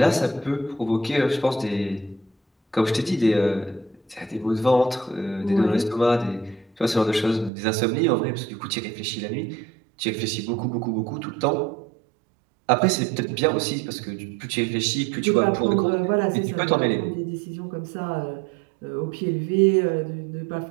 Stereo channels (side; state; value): left; drops out; at 7.5 s